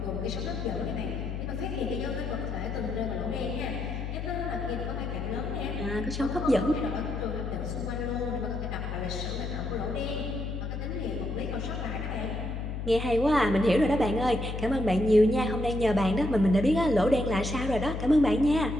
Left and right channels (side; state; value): left; noise; hum, 4 dB below the sound